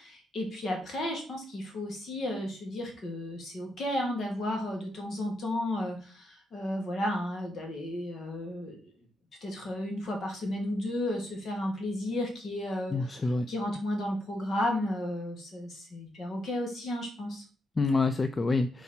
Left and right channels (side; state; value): both; normal; correlation 0.81